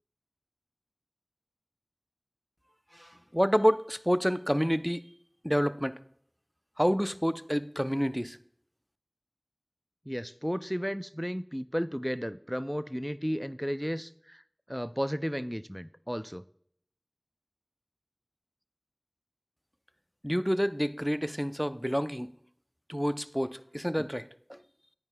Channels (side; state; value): both; identical; correlation 1.00